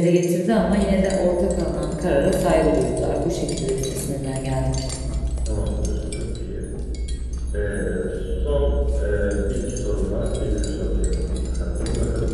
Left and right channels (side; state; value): both; identical; correlation 1.00